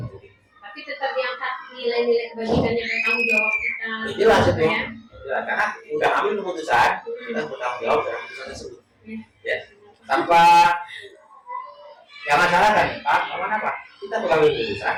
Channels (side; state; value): both; identical; correlation 1.00